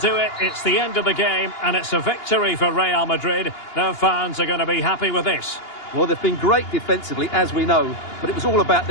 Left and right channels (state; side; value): late; right; 2.8 ms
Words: it. It's the end of the game, and it's a victory for Real Madrid. Their fans are going to be happy with this. Well, they've been great defensively, as we know, but it was all about